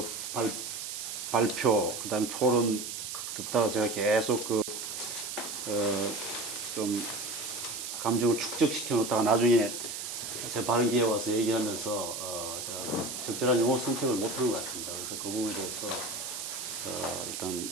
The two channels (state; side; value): noise; right; hiss, 6 dB below the sound